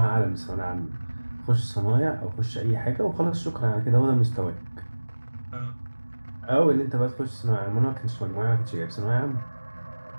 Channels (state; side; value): inverted; both; correlation -1.00